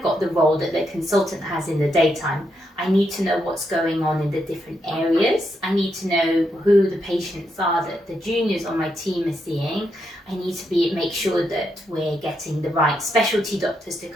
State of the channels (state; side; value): normal; both; correlation 0.81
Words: got the role that the consultant has in the daytime. I need to know what's going on in the different areas. I need to know who the patients are that the juniors on my team are seeing. I need to make sure that we're getting the right specialty doctors to